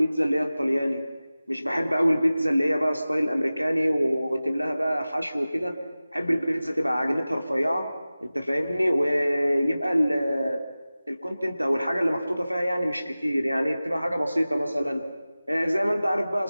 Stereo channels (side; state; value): both; inverted; correlation -0.97